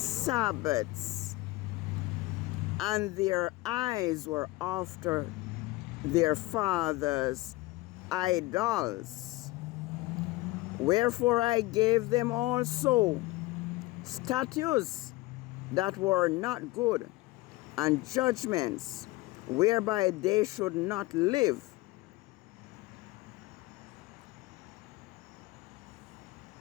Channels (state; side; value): quieter; right; 20.1 dB